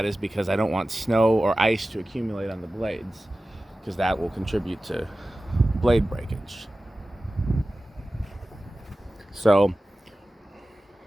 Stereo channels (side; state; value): both; normal; correlation 0.96